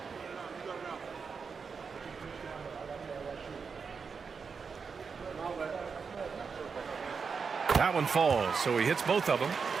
That one falls, so he hits both of them.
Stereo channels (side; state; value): left; quieter; 5.5 dB